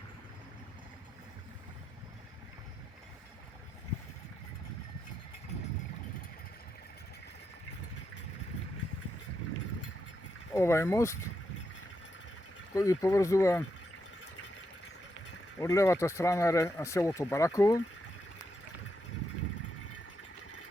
Ovaj most koji povezuje od levата страна селото Бараково,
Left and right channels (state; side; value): normal; both; correlation 0.83